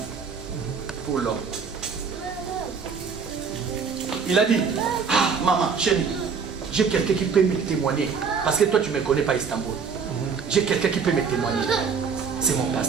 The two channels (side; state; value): left; quieter; 5.9 dB